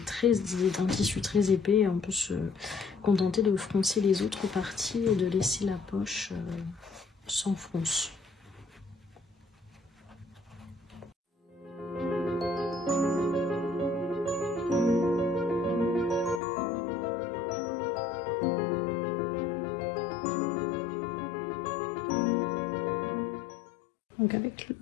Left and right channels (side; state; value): right; drops out; at 16.4 s